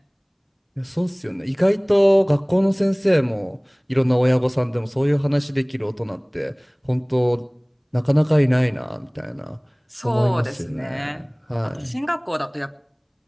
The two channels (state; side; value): identical; both; correlation 1.00